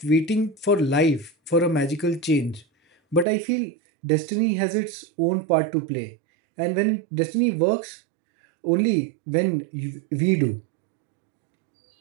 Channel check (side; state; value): left; drops out; at 3.2 s